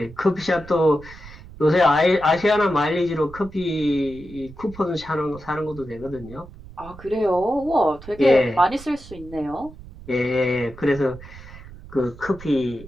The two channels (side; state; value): right; noise; rumble, 17 dB below the sound